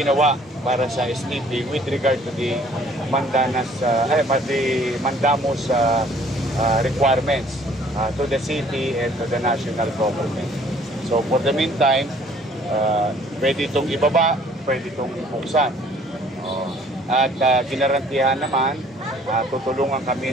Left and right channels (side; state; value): both; normal; correlation 0.57